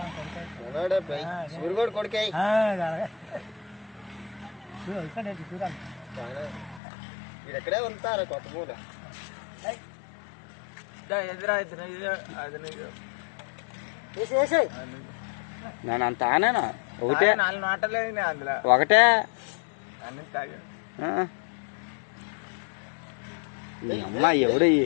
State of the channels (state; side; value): drops out; right; at 6.8 s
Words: కొడుకే ఇక్కడే ఉంటారు కొత్త పూల నేను అంత ఆనేనా ఒకటే 4 మాటలేదు అందులో ఒకటే అన్ని తాగా అమ్మా ఎవడు